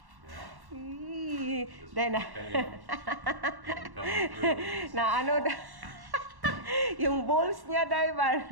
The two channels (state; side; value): late; left; 1.1 ms